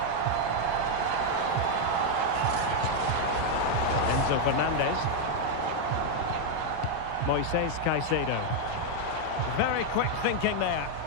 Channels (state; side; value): different; both; correlation 0.01